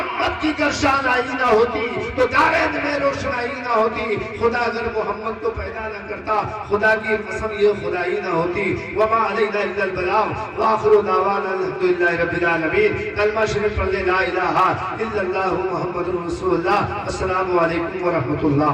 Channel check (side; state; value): both; identical; correlation 1.00